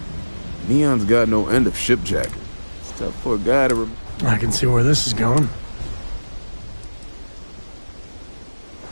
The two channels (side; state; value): both; inverted; correlation -1.00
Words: Neon's got no end of shipjack. It's tough for a guy to... I can see where this is going.